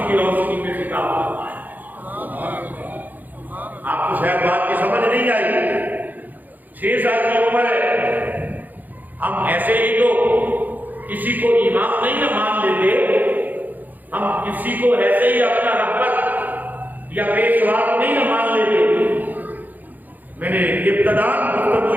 کی روشنی میں خطاب فرمایا۔ آپ کو شاید بات کی سمجھ نہیں آئی، 6 سال کی عمر ہے، ہم ایسے ہی تو کسی کو امام نہیں نہ مان لیتے، ہم کسی کو ایسے ہی اپنا رہبر یا پیشوا نہیں نہ مان لیتے۔ میں نے ابتداء گفتگو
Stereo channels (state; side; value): late; left; 0.084 ms